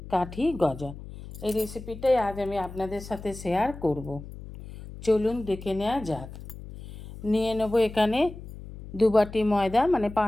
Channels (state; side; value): noise; left; hum, 14 dB below the sound